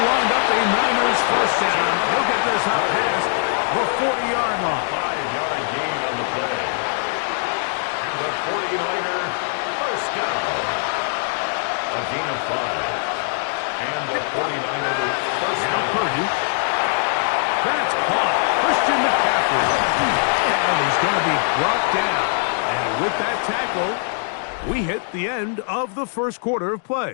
wind up a Niners 1st down. He'll get this out past the 40-yard line. 5-yard gain on the play. And the 49er 1st down. A gain of 5. And the 49er 1st Now down. Purdy. That's caught. Christian McCaffrey. And he's going to be brought down. And with that tackle, we hit the end of the 1st quarter of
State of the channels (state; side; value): silent; right; digital silence